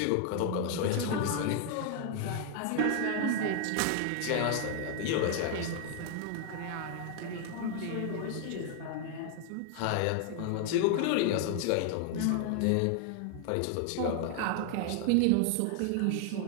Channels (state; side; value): different; both; correlation 0.00